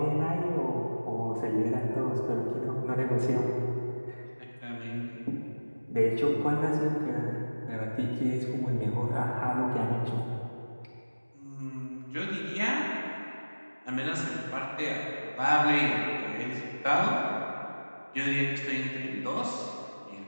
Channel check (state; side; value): inverted; both; correlation -1.00